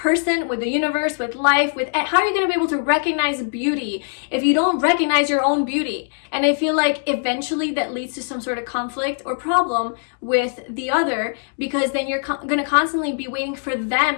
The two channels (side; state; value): right; silent; 65 dB below the other